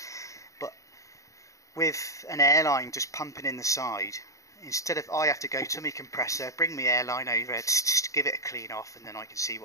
but with an airline just pumping in the side, instead of I have to go to my compressor, bring my airline over, just give it a clean off, and then I can see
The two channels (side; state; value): right; late; 0.16 ms